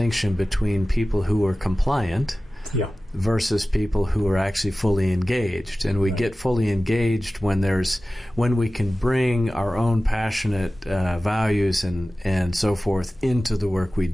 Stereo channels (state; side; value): normal; both; correlation 0.96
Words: between people who are compliant versus people who are actually fully engaged. And we get fully engaged when we can bring our own passionate values and so forth into the work we